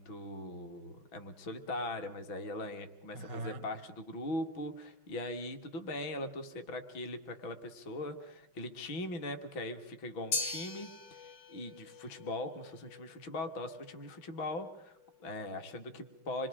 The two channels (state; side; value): late; right; 5.8 ms